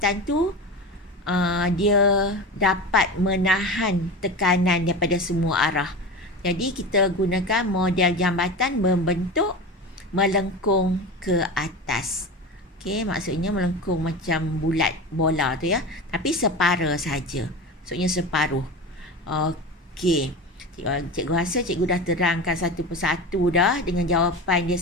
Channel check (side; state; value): both; normal; correlation 0.28